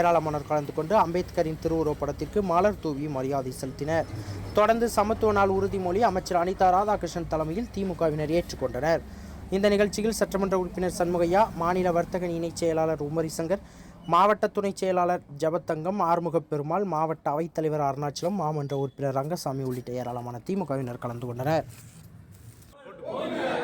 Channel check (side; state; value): both; identical; correlation 1.00